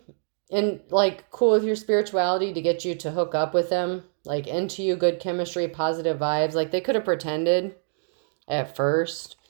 cool with your spirituality to get you to hook up with them. Like, into you, good chemistry, positive vibes. Like, they could have pretended at first.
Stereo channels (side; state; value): left; silent; digital silence